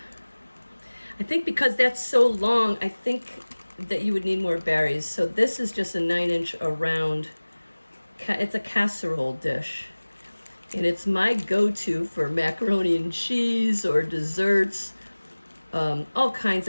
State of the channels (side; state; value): both; inverted; correlation -1.00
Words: think because that's so long, I think that you would need more berries. So this is just a 9-inch around, it's a casserole dish. And it's my go-to for macaroni and cheese or desserts. All kinds